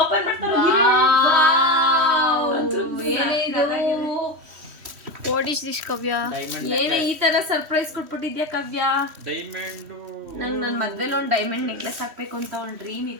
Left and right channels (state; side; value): late; left; 3.1 ms